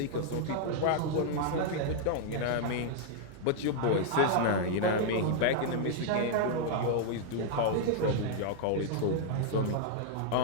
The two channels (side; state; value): both; different; correlation -0.01